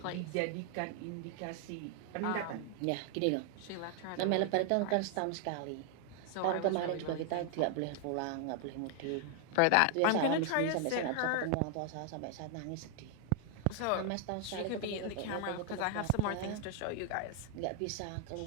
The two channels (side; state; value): both; different; correlation 0.00